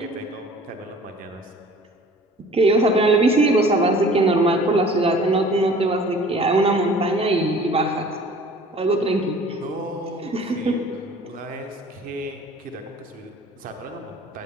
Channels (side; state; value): both; normal; correlation 0.48